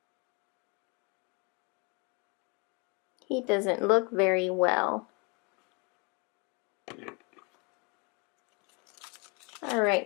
He doesn't look very well. Alright,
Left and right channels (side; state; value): right; quieter; 31.7 dB